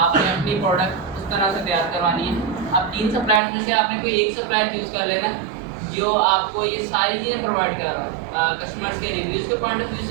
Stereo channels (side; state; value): left; drops out; at 3.4 s